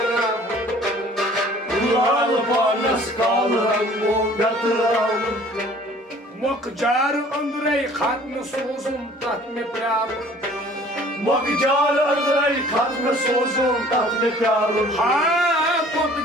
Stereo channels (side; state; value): both; normal; correlation 0.52